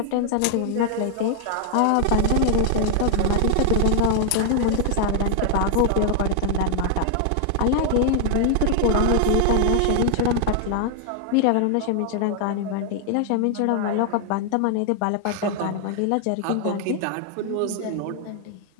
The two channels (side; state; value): both; different; correlation 0.00